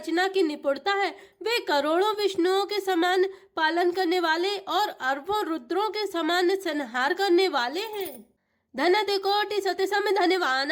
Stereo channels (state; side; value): identical; both; correlation 1.00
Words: की निपुणता है। वे करोड़ों विष्णुओं के समान पालन करने वाले, और अरबों रुद्रों के समान संहार करने वाले हैं। धनत कोटि सति सम